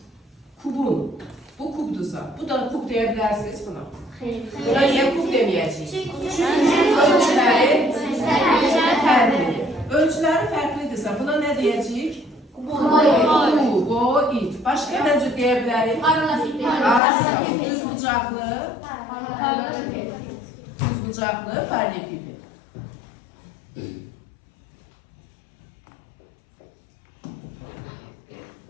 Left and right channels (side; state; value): right; drops out; at 17.0 s